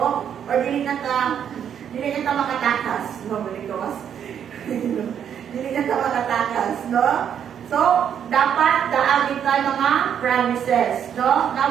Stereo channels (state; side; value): quieter; left; 8.7 dB